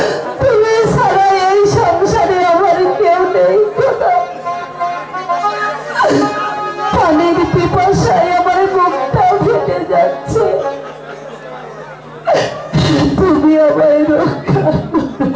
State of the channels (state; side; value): identical; both; correlation 1.00